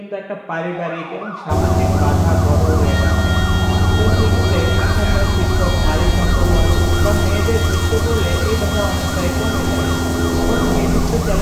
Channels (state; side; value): identical; both; correlation 1.00